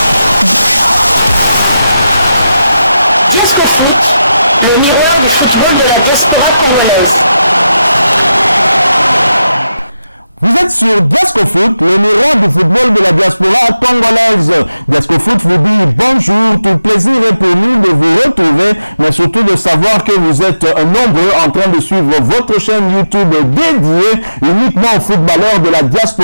Le miroir du football de la diaspora congolaise. Vous êtes sur Diasco Foot, le miroir du football de la diaspora congolaise. Diasco Foot vous dit bonjour, tout plaisir est pour nous de vous retrouver, mais surtout de savoir que vous êtes nombreux en train de suivre votre chaîne YouTube dédiée uniquement aux footballeurs de la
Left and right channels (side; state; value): both; inverted; correlation -0.90